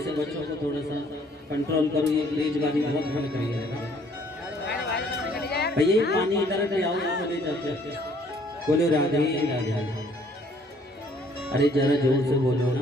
से बच्चों को थोड़ा सा कंट्रोल करो, ये तेजबाजी बहुत भर गई है। भैया ये पानी इधर ले आओ, चले जाते बोलो राधे राधे। अरे जरा जोर से बोलो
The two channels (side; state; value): both; normal; correlation 0.61